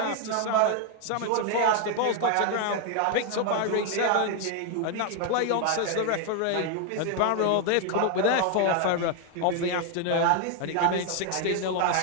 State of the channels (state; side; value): different; both; correlation 0.00